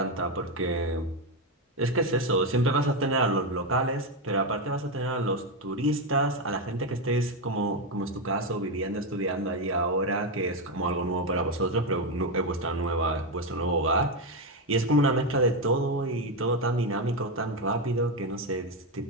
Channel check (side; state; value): both; normal; correlation 0.08